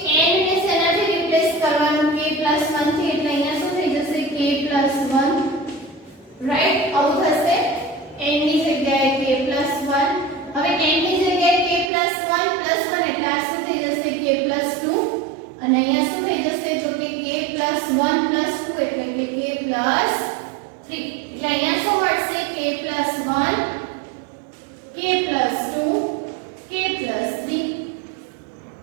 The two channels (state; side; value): drops out; left; at 11.9 s